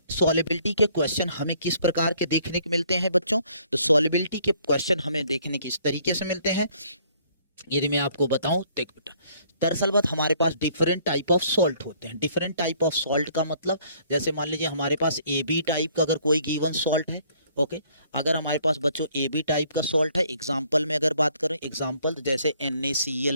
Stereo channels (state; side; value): inverted; both; correlation -0.62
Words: सॉल्युबिलिटी के क्वेश्चन हमें किस प्रकार के देखने को मिलते हैं बच्चों? तो सॉल्युबिलिटी के क्वेश्चन हमें देखने किस तरीके से मिलते हैं, यदि मैं आपको बताऊं, देख बेटा, दरअसल बात हमारे पास डिफरेंट टाइप ऑफ सॉल्ट होते हैं। डिफरेंट टाइप ऑफ सॉल्ट का मतलब, जैसे मान लीजिए हमारे पास AB टाइप का अगर कोई गिवन सॉल्ट है। ओके, अगर हमारे पास बच्चों AB टाइप का सॉल्ट है, एग्जांपल में अगर बात करें, एग्जांपल जैसे NaCl